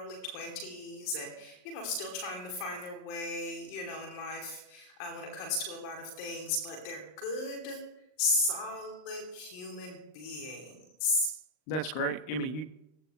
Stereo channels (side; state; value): right; late; 39 ms